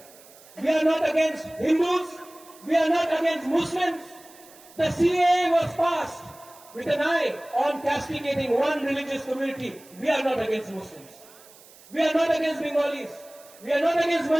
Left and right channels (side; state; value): right; noise; hiss, 23 dB below the sound